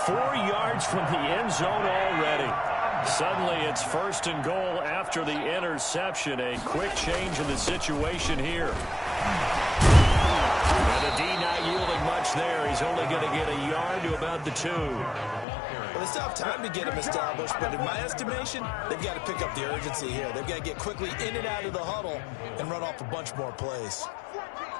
4 yards from the end zone already. Suddenly, it's 1st and goal after the interception. A quick change in the situation here. And the D not yielding much there. He's only going to get a yard to about the 2. Well, they still have time to get him established, but in my estimation, they've got to pick up the urgency here. They've got to get quickly in and out of the huddle and run off a bunch more plays.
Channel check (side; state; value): right; drops out; at 15.5 s